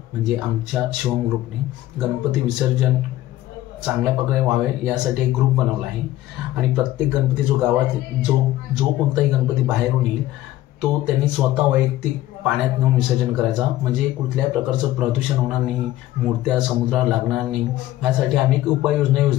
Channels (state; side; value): quieter; right; 15.0 dB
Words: म्हणजे आमच्या शिवम ग्रुपने गणपती विसर्जन चांगल्या प्रकारे व्हावे यासाठी एक ग्रुप बनवला आहे आणि प्रत्येक गणपती जो गावात जो कोणताही गणपती बाहेरून येईल तो त्यांनी स्वतः वैयक्तिक पाण्यात नेऊन विसर्जन करायचा, म्हणजे कुठल्याही प्रकारचं प्रदूषण होणार नाही, मूर्त्या समुद्राला लागणार नाही। यासाठी आम्ही एक उपाययोजना